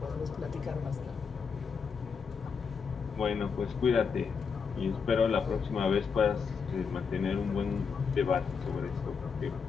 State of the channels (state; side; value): quieter; right; 5.8 dB